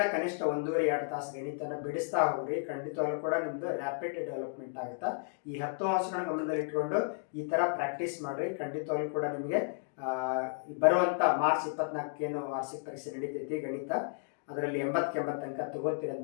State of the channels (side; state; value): right; silent; digital silence